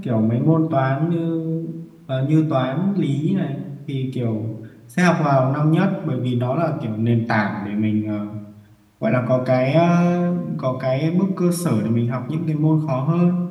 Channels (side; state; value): both; identical; correlation 1.00